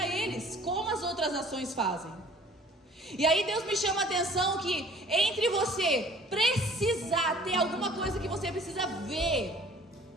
eles, como as outras nações fazem. E aí Deus me chama a atenção que entre você precisar ter alguma coisa que você precisa ver,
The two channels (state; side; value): normal; both; correlation 0.51